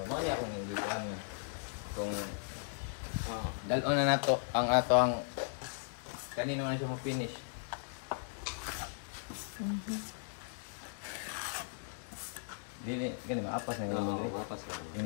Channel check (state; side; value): silent; right; digital silence